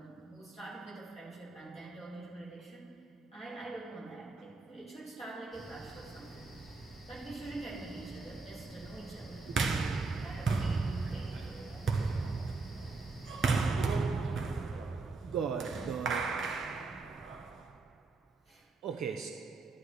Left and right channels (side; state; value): left; quieter; 3.9 dB